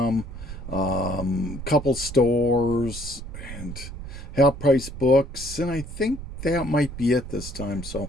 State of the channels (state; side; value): noise; right; rumble, 10 dB below the sound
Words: couple stores, and half price books, and I think that might be it this time.